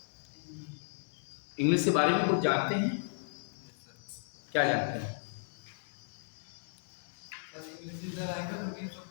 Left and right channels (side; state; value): right; silent; digital silence